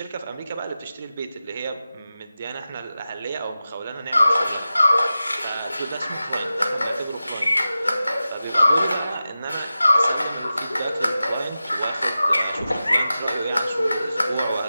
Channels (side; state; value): both; inverted; correlation -0.94